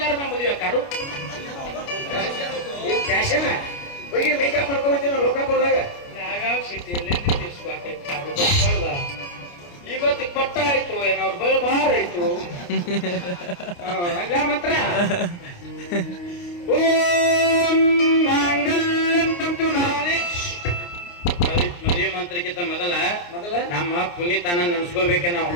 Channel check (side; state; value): right; late; 29 ms